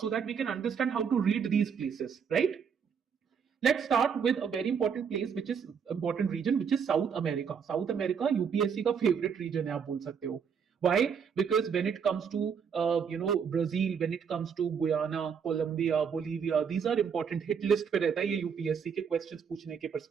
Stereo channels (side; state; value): left; quieter; 6.8 dB